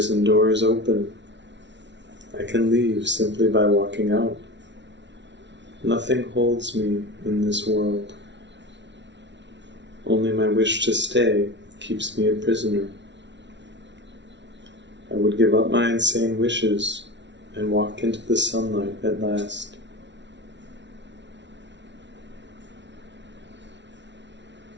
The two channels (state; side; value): late; left; 0.52 ms